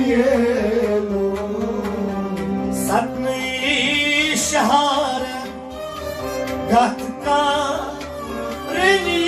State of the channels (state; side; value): identical; both; correlation 1.00